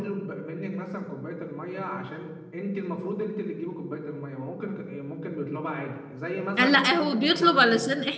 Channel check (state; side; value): identical; both; correlation 1.00